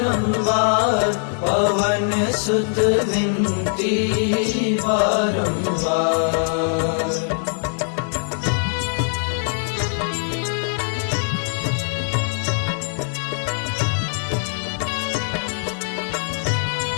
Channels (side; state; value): right; silent; 56 dB below the other